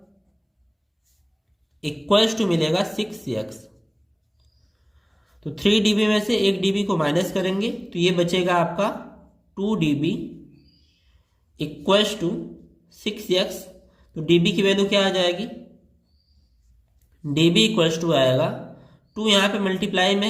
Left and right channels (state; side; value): identical; both; correlation 1.00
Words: इक्वल्स टू मिलेगा 6x। तो 3DB में से 1DB को माइनस करेंगे तो ये बचेगा आपका 2DB इक्वल्स टू 6x। तो DB की वैल्यू क्या आ जाएगी, DB इक्वल्स टू आएगा 2, यहाँ पे मल्टीप्लाई में